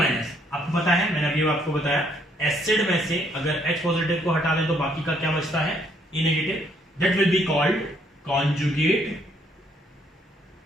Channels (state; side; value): normal; both; correlation 0.68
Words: आपको पता है, मैंने अभी आपको बताया, एसिड में से अगर H पॉजिटिव को हटा दें तो बाकी का क्या बचता है, A negative, that will be called conjugate